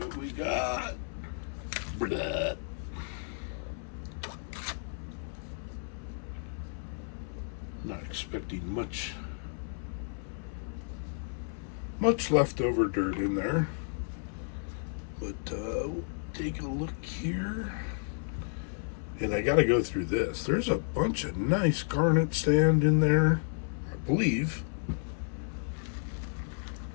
we got. Blah. Not expecting much leftover dirt in there. But we'll take a look here. And I got to go through this. There's a bunch of nice garnet sand in there, I believe.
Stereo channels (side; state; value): right; silent; 56 dB below the other